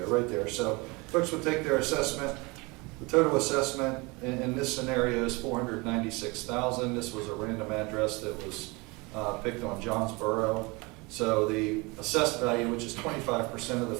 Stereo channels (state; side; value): quieter; left; 26.1 dB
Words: right there. So folks would take their assessment. The total assessment in this scenario is $496,000. This was a random address that was picked on Johnsboro. So the assessed value, which is 25% of the